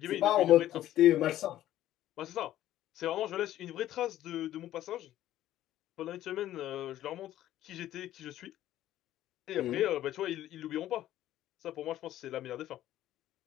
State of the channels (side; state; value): right; quieter; 13.2 dB